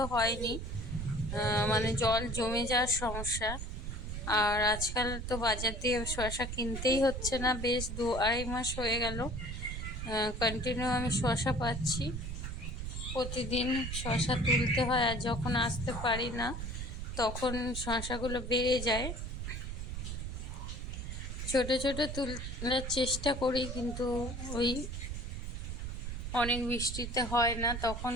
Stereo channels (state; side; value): noise; right; rumble, 5 dB below the sound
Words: হয়নি, মানে জল জমে যাওয়ার সমস্যা। আর আজকাল তো বাজার দিয়ে শসা কিনতেই হচ্ছে না, বেশ 2-2.5 মাস হয়ে গেল কন্টিনিউ আমি শসা পাচ্ছি। প্রতিদিন শসা তুলতে হয়, আর যখন আসতে পারি না তখন শসাগুলো বেড়ে যায়। ছোট ছোট তোলার চেষ্টা করি, কিন্তু ওই অনেক বৃষ্টিতে হয় না, তখন